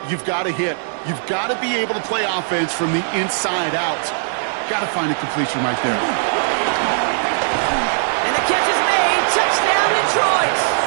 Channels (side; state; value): left; silent; digital silence